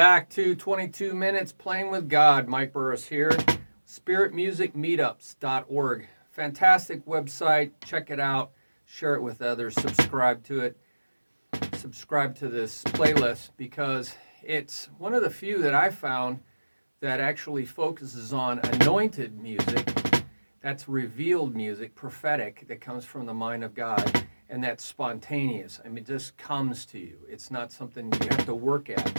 to 22 Minutes Playing with God. Mike Burris here. Spirit Music Meetups.org. Fantastic website. Check it out. Share it with others. Subscribe to it. Subscribe to this playlist because it's one of the few that I found that actually focuses on anointed music. That's revealed music, prophetic, that comes from the mind of God. And that's spontaneous. I mean, it just comes to you. It's not something you have to work at.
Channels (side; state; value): both; inverted; correlation -1.00